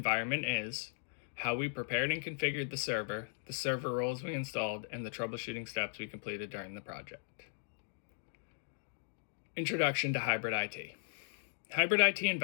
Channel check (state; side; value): silent; right; digital silence